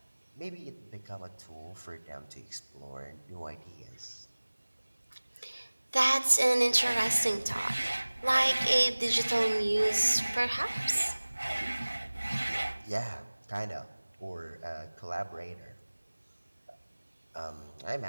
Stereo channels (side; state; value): both; inverted; correlation -1.00